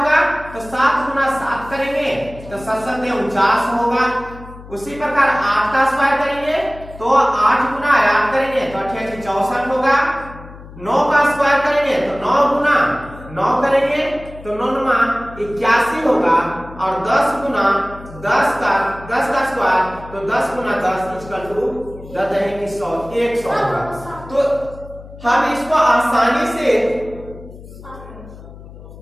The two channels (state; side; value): noise; left; hum, 17 dB below the sound